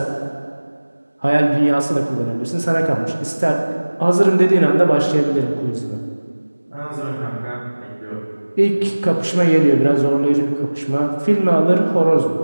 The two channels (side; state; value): both; inverted; correlation -1.00